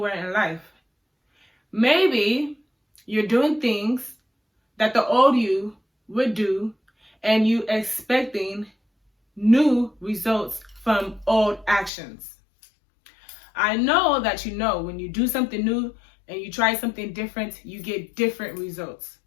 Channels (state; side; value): drops out; right; at 11.9 s